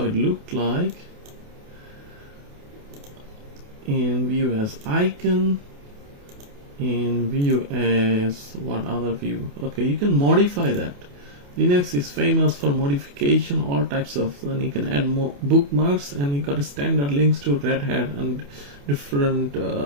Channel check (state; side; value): late; left; 28 ms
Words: it looked like. And view as icon. And view as what other view? Okay, you can modify that. Linux is famous for modification, all types of, and you can add more bookmarks, and you got a standard links to Red Hat and different